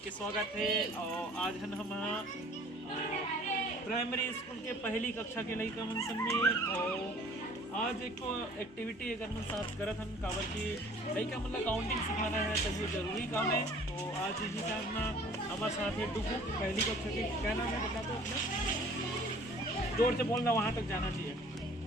के स्वागत है। और आज हम प्राइमरी स्कूल के पहली कक्षा के लड़का मन सब में और आज एक एक्टिविटी अगर मन साथ करत हम काबर की लड़का मतलब काउंटिंग सिखाना है तो ये जरूरी काम है। तो आज इसी साथ में हमारे साथ है डुगू पहली कक्षा के। क्या नाम है बता दो अपना, जोर से बोलना, वहाँ तक जाना चाहिए।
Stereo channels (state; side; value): normal; both; correlation 0.51